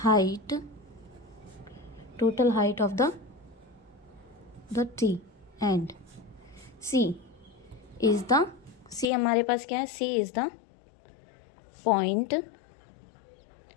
height of the tree and C हमारे पास क्या है, C is the point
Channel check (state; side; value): drops out; right; at 9.1 s